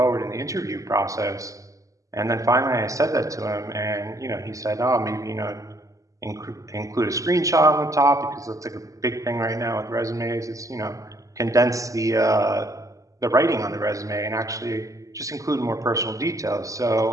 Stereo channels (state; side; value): late; left; 0.16 ms